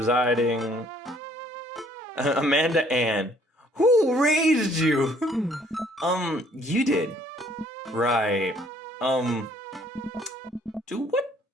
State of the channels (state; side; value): normal; both; correlation 0.61